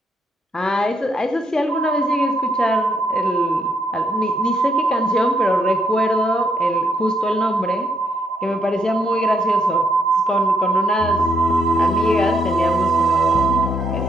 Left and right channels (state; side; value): normal; both; correlation 0.74